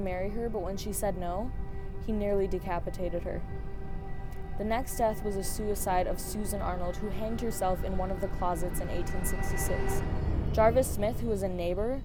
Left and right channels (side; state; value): both; identical; correlation 1.00